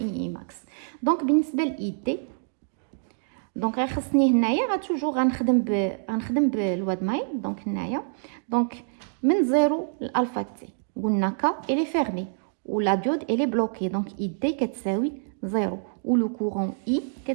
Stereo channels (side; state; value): left; silent; digital silence